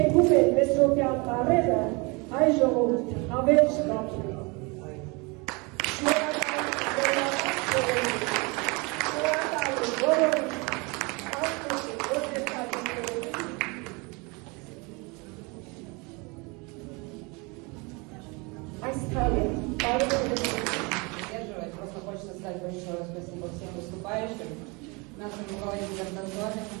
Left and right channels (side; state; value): left; quieter; 28.5 dB